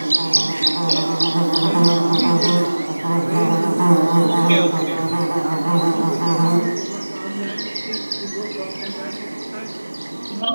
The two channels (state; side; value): inverted; both; correlation -1.00